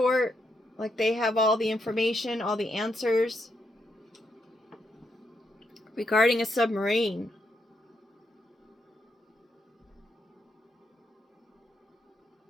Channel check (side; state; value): both; normal; correlation 0.80